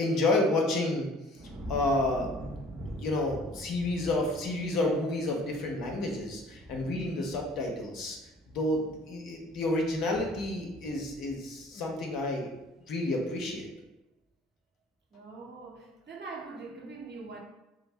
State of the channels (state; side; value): normal; both; correlation 0.52